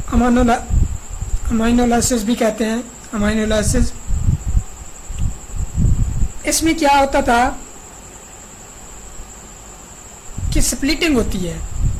अमाइनोलाइसिस भी कहते हैं, अमाइनोलाइसिस। इसमें क्या होता था कि स्प्लिटिंग होती है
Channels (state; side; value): identical; both; correlation 1.00